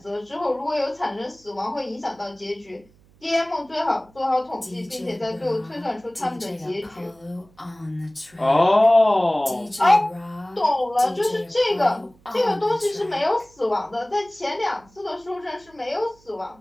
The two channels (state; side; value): noise; right; hum, 30 dB below the sound